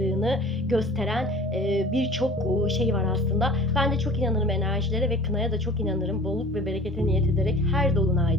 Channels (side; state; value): both; normal; correlation 0.44